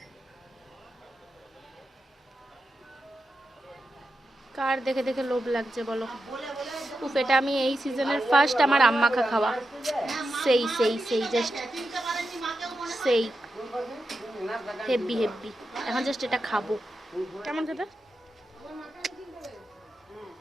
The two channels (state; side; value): normal; both; correlation 0.89